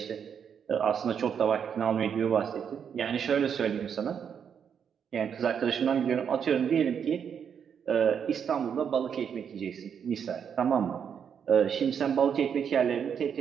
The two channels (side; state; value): left; quieter; 7.6 dB